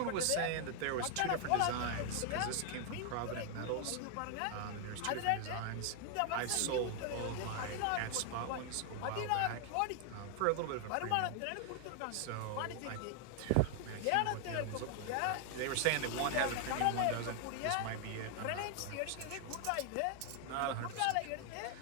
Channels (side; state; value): both; different; correlation 0.00